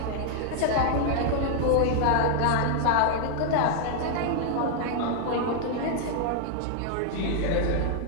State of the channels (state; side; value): different; both; correlation 0.00